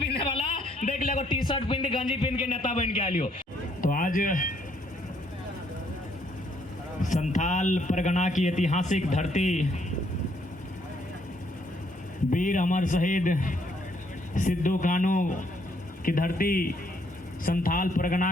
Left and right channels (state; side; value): normal; both; correlation 0.69